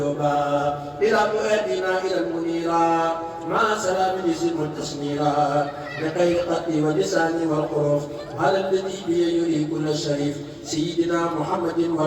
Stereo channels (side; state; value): both; identical; correlation 1.00